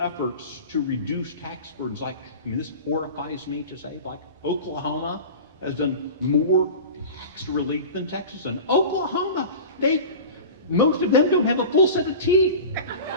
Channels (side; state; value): both; inverted; correlation -0.34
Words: efforts to reduce tax burdens. Like, I mean, this horrifies me to say, like Oklahoma has done more tax relief than Texas. And Oklahoma, most of them don't have a full set of teeth.